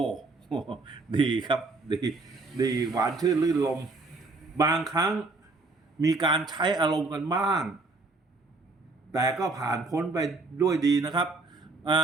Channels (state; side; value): quieter; left; 3.6 dB